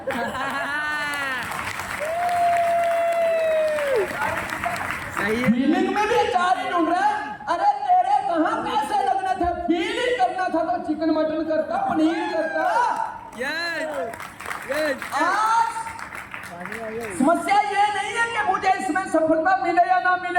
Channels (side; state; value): both; identical; correlation 1.00